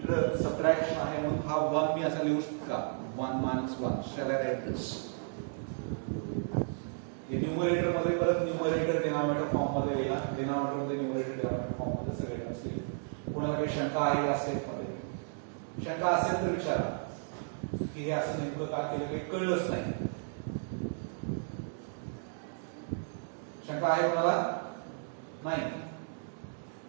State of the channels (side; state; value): left; silent; digital silence